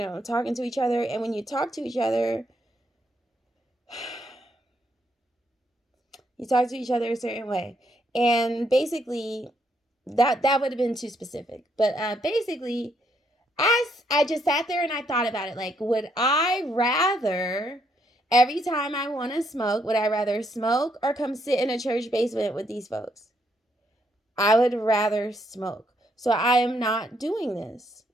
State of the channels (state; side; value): normal; both; correlation 0.74